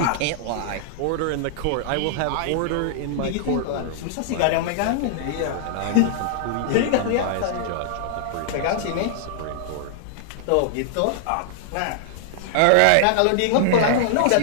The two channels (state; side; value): different; both; correlation -0.01